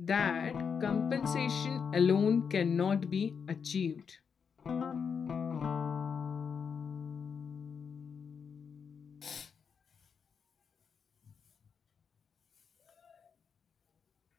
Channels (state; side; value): quieter; right; 6.4 dB